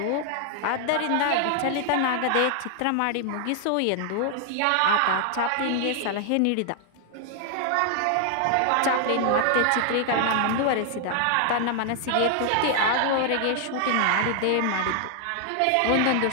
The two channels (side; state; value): both; different; correlation 0.00